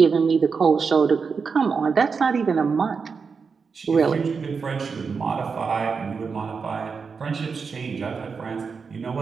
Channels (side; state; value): left; quieter; 5.4 dB